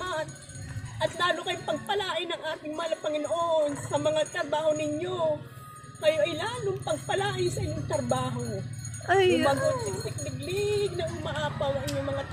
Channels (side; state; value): both; identical; correlation 1.00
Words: At lalo kayong pagpalain ng ating mahal na Panginoon sa mga trabaho ninyo. Kayo ay lalong pagpalain sa inyong trabaho. Ay, Umagot, siksik, liglig na umaapaw ang inyong mga